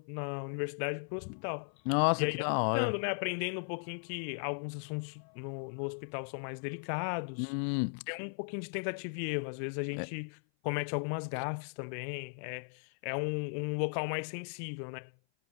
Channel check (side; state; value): right; silent; 53 dB below the other